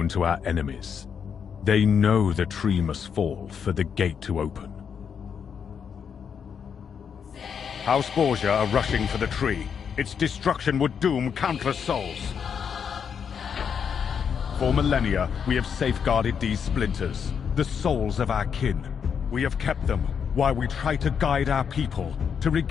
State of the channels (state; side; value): quieter; right; 7.1 dB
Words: to our enemies. They know the tree must fall for the gate to open. House Borgia are rushing for the tree. Its destruction would doom countless souls. For millennia, we have safeguarded these splinters, the souls of our kin. We have kept them while we try to guide our people to